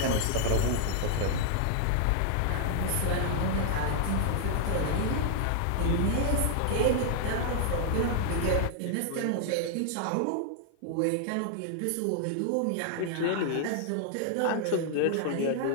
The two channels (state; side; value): different; both; correlation 0.00